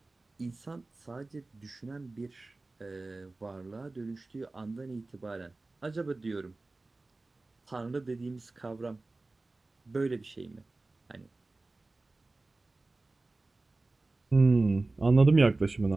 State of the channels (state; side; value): quieter; left; 3.2 dB